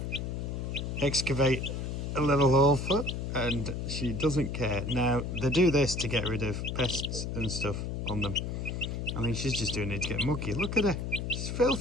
excavate a little hole for, and she doesn't care. Now, they do this to get rid of pests and stuff on them. I think she's just doing it to get mucky. Look at her, she's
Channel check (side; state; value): left; noise; hum, 4 dB below the sound